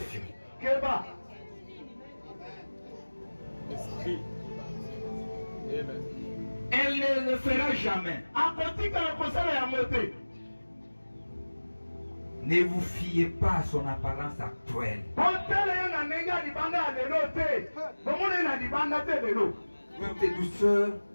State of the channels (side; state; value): both; inverted; correlation -1.00